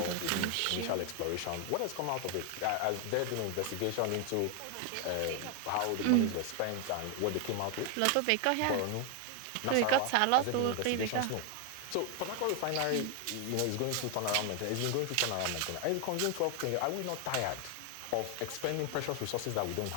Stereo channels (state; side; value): different; both; correlation 0.01